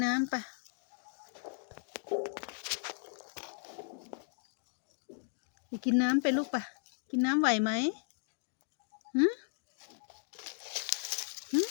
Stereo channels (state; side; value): silent; right; digital silence